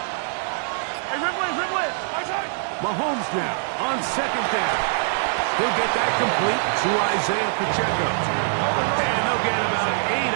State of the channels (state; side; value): silent; left; digital silence